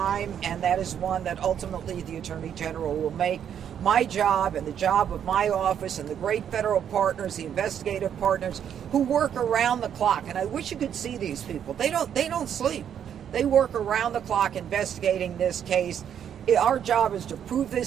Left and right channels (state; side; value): quieter; left; 9.0 dB